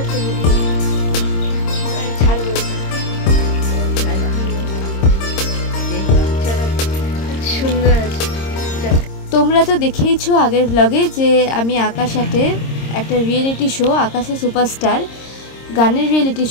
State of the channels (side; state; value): right; late; 26 ms